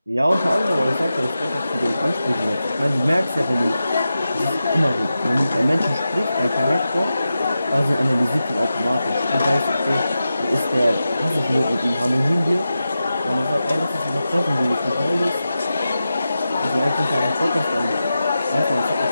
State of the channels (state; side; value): inverted; both; correlation -0.92